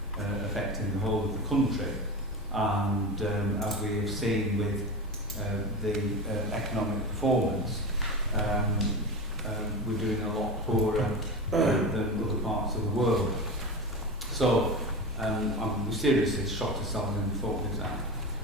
affecting the whole of the country, and as we have seen with the economic performance, we're doing a lot poorer than other parts of the world. So we seriously shot ourselves in the foot with that.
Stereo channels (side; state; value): both; normal; correlation 0.25